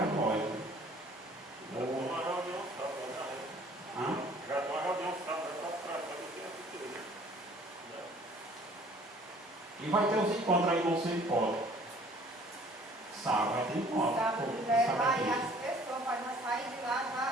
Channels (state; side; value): normal; both; correlation 0.54